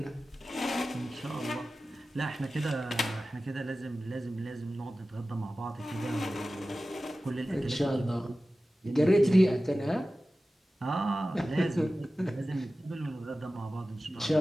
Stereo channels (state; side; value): normal; both; correlation 0.95